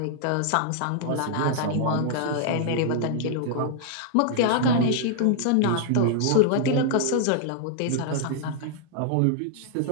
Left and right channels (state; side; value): different; both; correlation -0.01